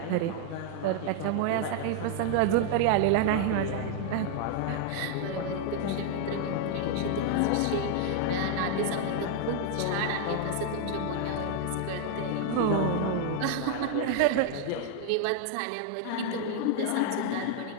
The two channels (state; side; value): different; both; correlation 0.00